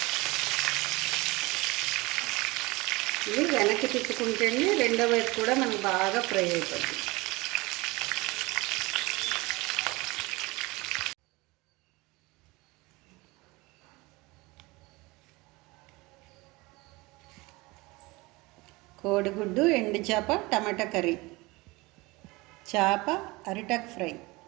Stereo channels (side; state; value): left; quieter; 23.1 dB